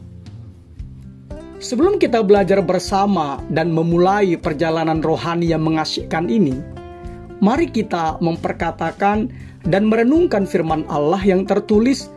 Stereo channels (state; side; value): identical; both; correlation 1.00